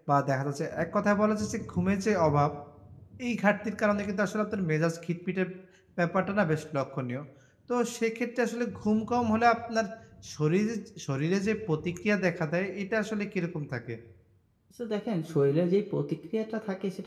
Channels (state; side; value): identical; both; correlation 1.00